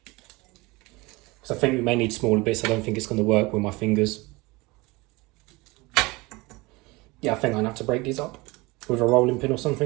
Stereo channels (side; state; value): left; quieter; 23.4 dB